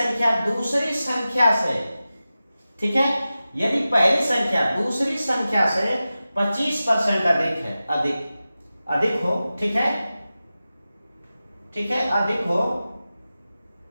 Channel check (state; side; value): inverted; both; correlation -0.95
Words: दूसरी संख्या से, ठीक है, यदि पहली संख्या दूसरी संख्या से 25% अधिक है, अधिक हो, ठीक है, ठीक है, अधिक हो,